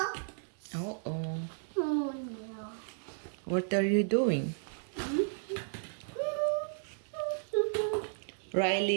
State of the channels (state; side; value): silent; left; digital silence